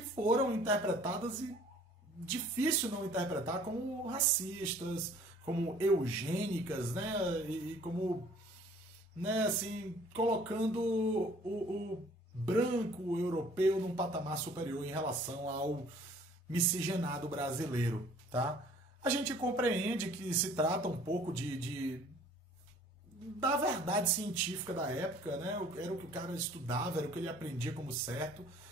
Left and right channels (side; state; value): both; normal; correlation 0.53